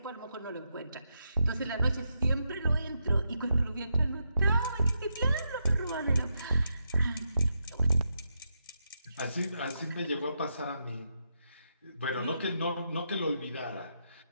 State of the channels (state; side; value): inverted; both; correlation -0.83